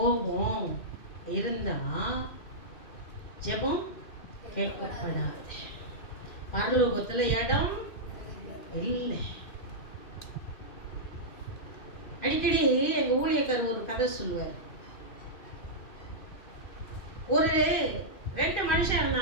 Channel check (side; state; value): right; late; 2.5 ms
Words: இருந்தா ஜெபம் கேட்கப்படாது. பரலோகத்துல இடம் இல்லை. அடிக்கடி எங்க ஊழியக்காரர் ஒரு கதை சொல்லுவார். ஒரு 2 மனுஷன்